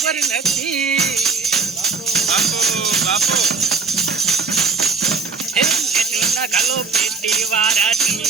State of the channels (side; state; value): left; quieter; 4.7 dB